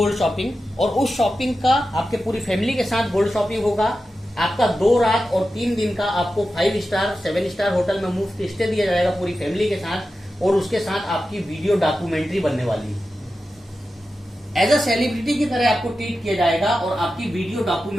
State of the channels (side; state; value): both; normal; correlation 0.92